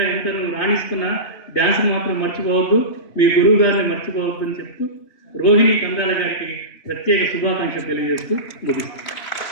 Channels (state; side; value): late; right; 2.7 ms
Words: ఎంత నువ్వు రాణిస్తున్నా డ్యాన్స్ని మాత్రం మర్చిపోవద్దు, మీ గురువు గారిని మర్చిపోవద్దు అని చెప్తూ రోహిణి కందాల గారికి ప్రత్యేక శుభాకాంక్షలు తెలియజేస్తూ ముగిస్తాను.